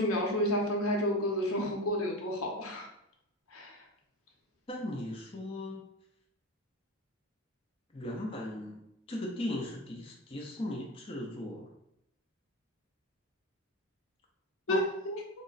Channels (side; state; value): both; normal; correlation 0.23